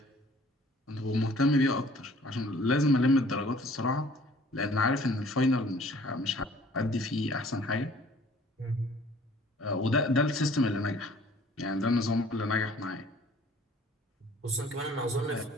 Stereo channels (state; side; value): normal; both; correlation 0.54